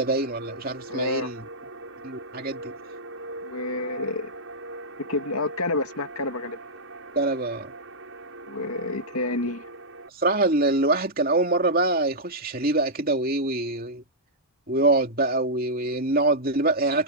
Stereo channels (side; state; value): both; normal; correlation -0.11